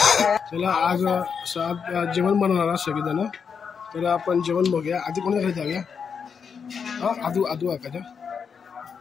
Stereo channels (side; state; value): right; quieter; 6.4 dB